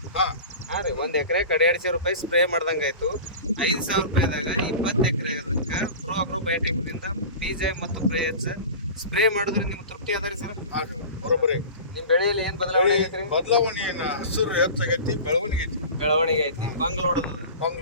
ಹಾಂ ರೀ, 1 ಎಕರೆಗೆ 1,500 ರೂಪಾಯಿ ಸ್ಪ್ರೇ ಮಾಡ್ದಂಗೆ ಆಯ್ತು. 5,000 ರೂಪಾಯಿದಾಗ 20 ಎಕರೆ ಅದಕ್ಕೆ ಪ್ರೋ ಅಗ್ರೋ ಬಯೋಟೆಕ್ನಿಂದ ಪಿಜೈಮ್ ಮತ್ತು ಗ್ರೋಎಚ್ ಸ್ಪ್ರೇ ಮಾಡಿದ್ರೆ ನಿಮ್ಗೆ ತೃಪ್ತಿ ಅದ ರೀ ಸರ್? ಬರೋಬ್ಬರಿ. ನಿಮ್ಮ ಬೆಳೆಯಲ್ಲಿ ಏನು ಬದಲಾವಣೆ ಆಗೈತೆ ರೀ? ಬದಲಾವಣೆ ಹಸಿರು ಹೆಚ್ಚಾಗೈತಿ, ಬೆಳವಣಿಗೆ ಐತಿ. ಬಂಗ್ ಲೋಡ್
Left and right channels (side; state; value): both; inverted; correlation -0.35